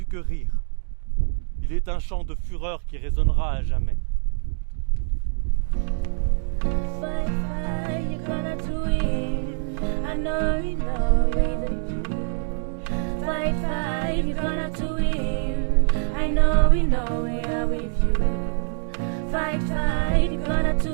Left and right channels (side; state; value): left; silent; digital silence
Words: que rire, il est un chant de fureur qui résonnera à jamais. Fight, fight, you're gonna do it. I know it with you. Fight, fight, you're gonna do it. I know we are with you. Fight, fight, you're gonna